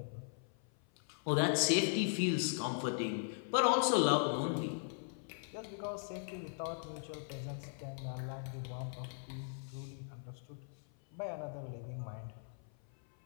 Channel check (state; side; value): silent; right; 52 dB below the other